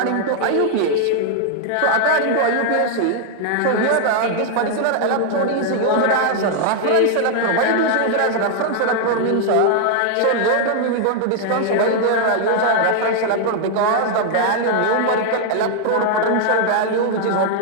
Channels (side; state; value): both; different; correlation 0.00